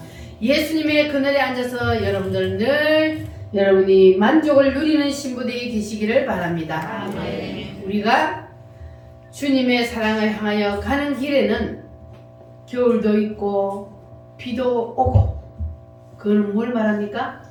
예수님의 그늘에 앉아서 여러분들 늘 여러분이 만족을 누리는 신부들이 되시기를 바랍니다. 우리가 주님의 사랑을 향하여 가는 길에는 겨울도 있고 비도 오고 그건 뭘 말합니까?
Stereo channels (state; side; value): identical; both; correlation 1.00